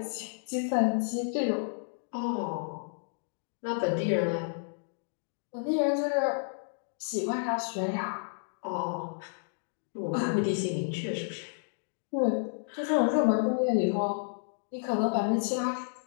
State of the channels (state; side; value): silent; right; digital silence